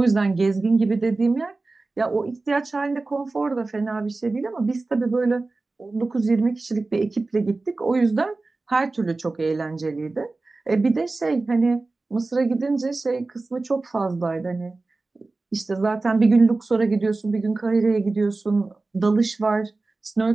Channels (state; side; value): quieter; left; 3.4 dB